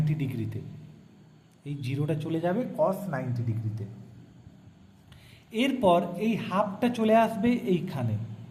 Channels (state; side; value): identical; both; correlation 1.00